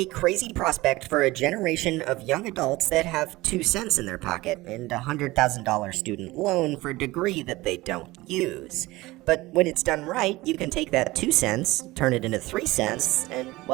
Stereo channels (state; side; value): quieter; left; 19.6 dB